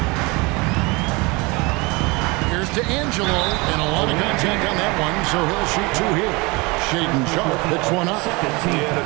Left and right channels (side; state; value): left; quieter; 25.9 dB